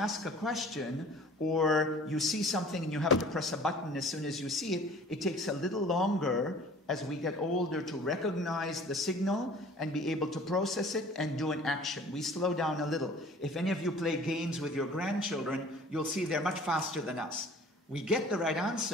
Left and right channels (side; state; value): both; normal; correlation 0.48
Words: a question, or you see something and you have to press a button as soon as you see it, it takes a little longer as we get older to recognize the signal and be able to process it and do an action. We slow down a little. If any of you play games with your grandchildren, you'll see they're much faster than us. We get the right